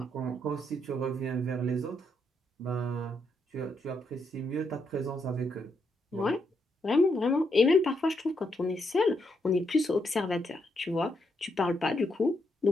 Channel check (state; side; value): normal; both; correlation 0.78